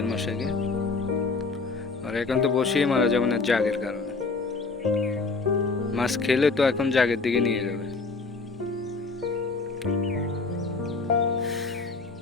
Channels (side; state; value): right; quieter; 4.0 dB